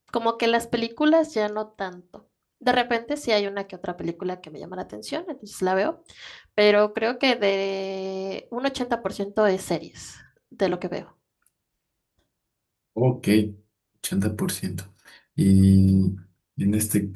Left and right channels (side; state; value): both; identical; correlation 1.00